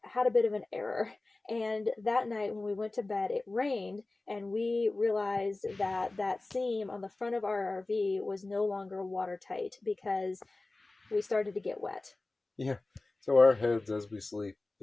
had a bit of an error. And that night when we went to bed, it rained, and we realized that that seam on the front of our RV was no longer watertight because we started to get wet. Yeah. So our heads as we sleep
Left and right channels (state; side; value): quieter; right; 3.1 dB